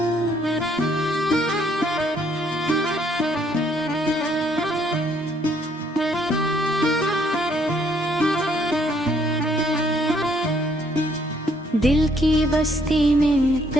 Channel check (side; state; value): both; normal; correlation 0.67